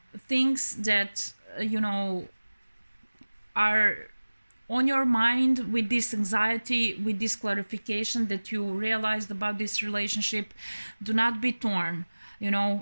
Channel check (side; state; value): both; inverted; correlation -1.00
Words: things that, you know, are on your mind, with this anxiety, with this clarification that you realized about this relationship. Do not be torn. You